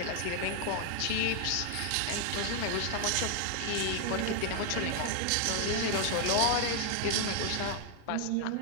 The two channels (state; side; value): different; both; correlation 0.00